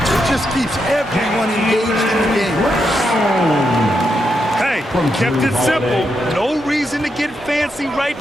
it just keeps everyone engaged in the game. Hey, kept it simple. No reason to get fancy right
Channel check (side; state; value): both; normal; correlation 0.83